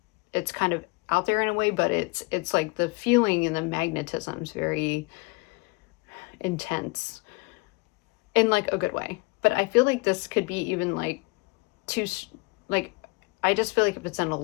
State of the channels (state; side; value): quieter; right; 27.6 dB